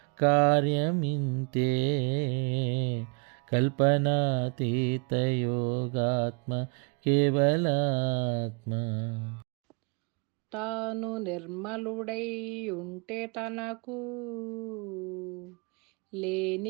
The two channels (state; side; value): quieter; left; 34.0 dB